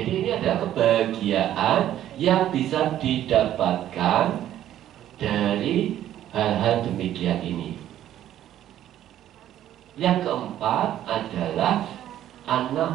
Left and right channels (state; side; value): quieter; left; 12.0 dB